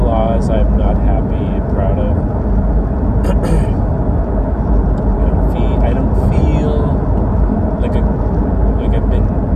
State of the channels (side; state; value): both; identical; correlation 1.00